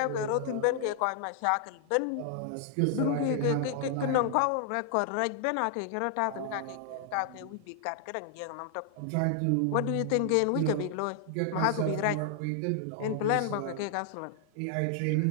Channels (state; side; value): different; both; correlation -0.01